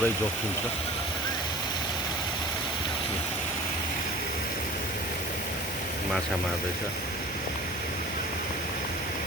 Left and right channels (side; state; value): both; normal; correlation 0.41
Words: जोखिम छ माछा मार्दैछ